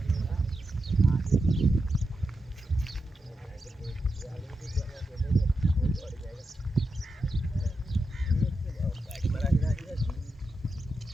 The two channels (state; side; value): normal; both; correlation 0.87